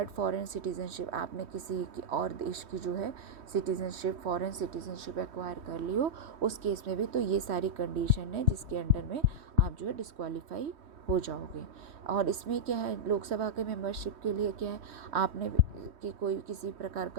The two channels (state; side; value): late; left; 3.1 ms